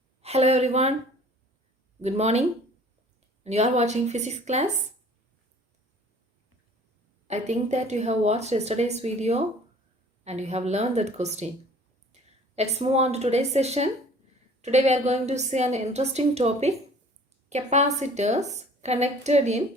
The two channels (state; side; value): normal; both; correlation 0.50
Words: Hello everyone, good morning, and you are watching physics class. I think that you have watched yesterday's video and you have learned that question. Let's move on to today's session. Today we are going to see an interesting topic, capacitors connected in